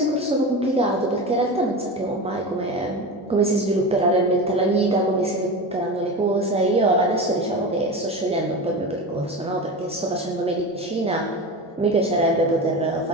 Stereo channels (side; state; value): both; normal; correlation 0.26